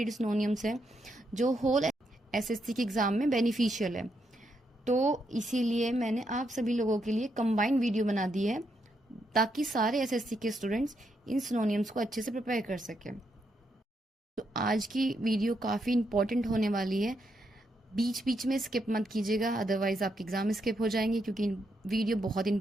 सिनोनिम्स है जो होल SSC के एग्ज़ाम में बेनिफिशियल है। तो इसीलिए मैंने आप सभी लोगों के लिए कंबाइंड वीडियो बना दी है ताकि सारे SSC के स्टूडेंट्स इन सिनोनिम्स को अच्छे से प्रिपेयर कर सकें। तो आज की वीडियो काफ़ी इंपॉर्टेंट होने वाली है, बीच बीच में स्किप मत कीजिएगा, अदरवाइज आपके एग्जाम स्किप हो जाएंगे क्योंकि वीडियो बहुत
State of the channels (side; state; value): both; normal; correlation 0.79